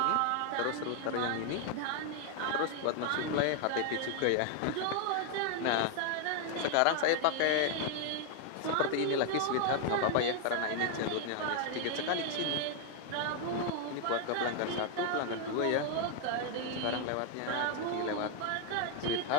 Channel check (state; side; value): different; both; correlation 0.00